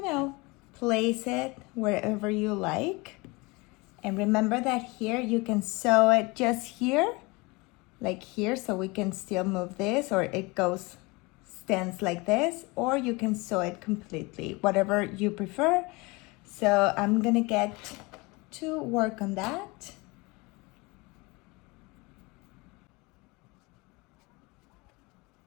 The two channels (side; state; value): right; quieter; 25.3 dB